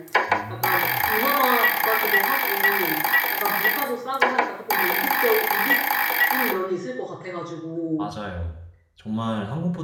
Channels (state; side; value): identical; both; correlation 1.00